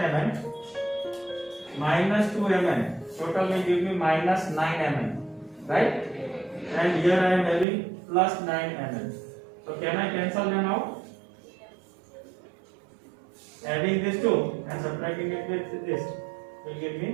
minus 2 mn. Total will give me minus 9 mn. Right? And here I am having plus 9 mn. So can I cancel them out? Adding this 2 and subtracting it with this will give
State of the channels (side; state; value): left; drops out; at 7.7 s